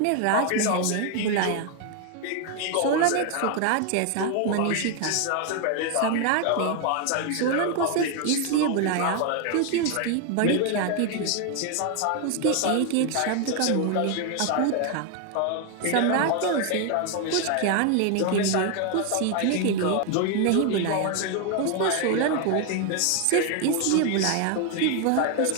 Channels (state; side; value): different; both; correlation 0.01